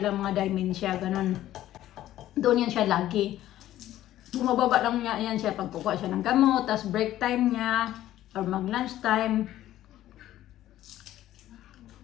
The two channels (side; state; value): right; quieter; 13.5 dB